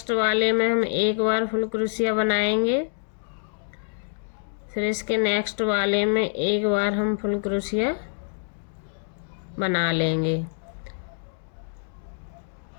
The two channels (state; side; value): silent; right; digital silence